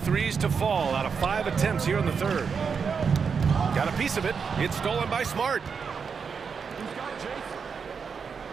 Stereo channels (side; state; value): left; quieter; 6.0 dB